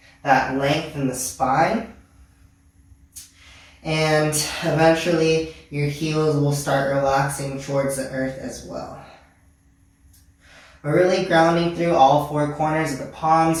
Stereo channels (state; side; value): identical; both; correlation 1.00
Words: that length in the spine. And eventually, your heels will start relaxing towards the earth as well. We're really grounding through all four corners of the